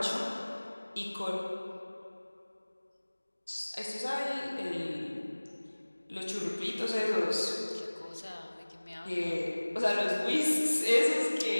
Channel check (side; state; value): both; inverted; correlation -1.00